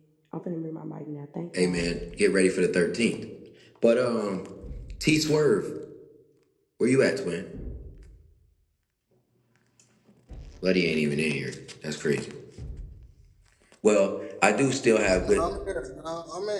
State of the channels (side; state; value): both; identical; correlation 1.00